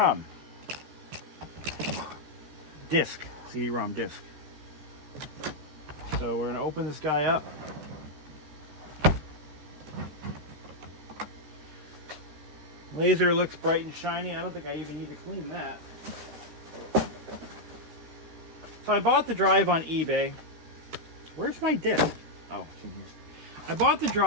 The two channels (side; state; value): left; late; 13 ms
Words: Disc, CD-ROM disc. So we're going to open this guy up. Laser looks bright and shiny. I don't think I even need to clean that. So I bought the drive on eBay. Where's my disc? Oh, it's in here. I bought the